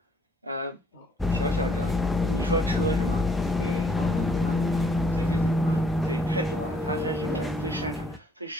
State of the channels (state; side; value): normal; both; correlation 0.65